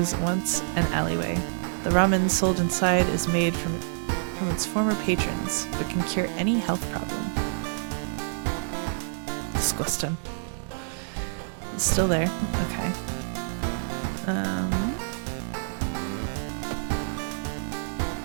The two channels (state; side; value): silent; left; 57 dB below the other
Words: once an alleyway. The ramen sold inside is made from its former patrons, but can cure any health problem. Disgusting. It's still there. Okay.